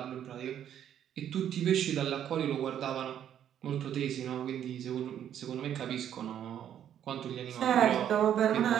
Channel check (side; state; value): left; quieter; 10.0 dB